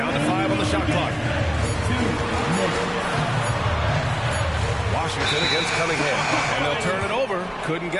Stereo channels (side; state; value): both; identical; correlation 1.00